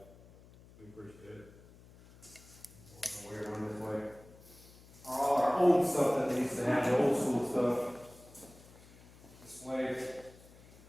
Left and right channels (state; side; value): noise; left; hum, 22 dB below the sound